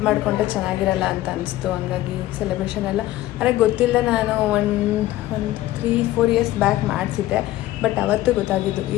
ಮಾಡಿಕೊಂಡ್ರೆ ಚೆನ್ನಾಗಿರಲ್ಲ ಅಂತ ಅನಿಸ್ತು. ಹಂಗಾಗಿ ಸೆಲೆಬ್ರೇಷನ್ ಎಲ್ಲ ಅಂದರೆ ಗೊತ್ತಿಲ್ಲ, ನಾನು ಒಂದು 3-4 ಇಯರ್ಸ್ ಬ್ಯಾಕ್ ಮಾಡಿಸಿದ್ದೆ. ಬಟ್ ಅವತ್ತು ಗೊತ್ತಾಗಿದ್ದು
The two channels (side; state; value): right; quieter; 15.5 dB